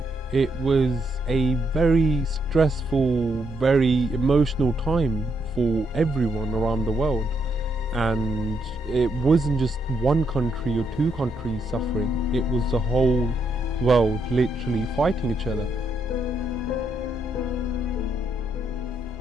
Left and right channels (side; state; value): both; normal; correlation 0.77